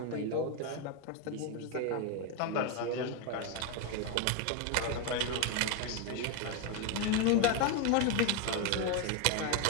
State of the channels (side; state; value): both; different; correlation 0.01